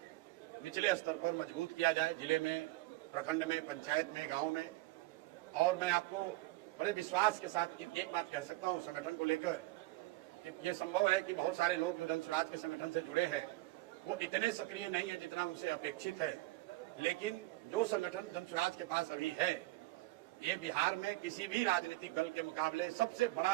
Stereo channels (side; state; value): left; quieter; 19.8 dB